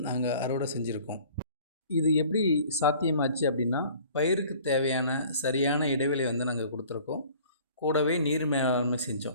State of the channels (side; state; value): both; inverted; correlation -0.50